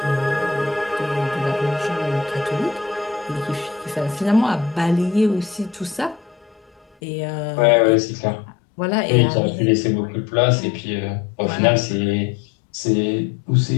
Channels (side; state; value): right; drops out; at 6.9 s